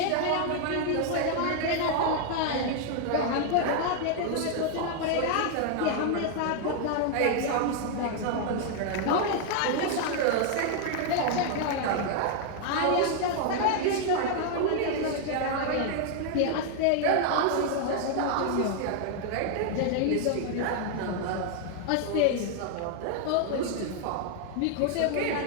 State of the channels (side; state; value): both; different; correlation 0.00